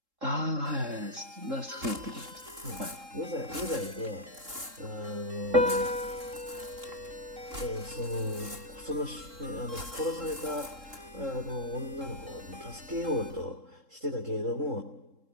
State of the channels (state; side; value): late; left; 3.7 ms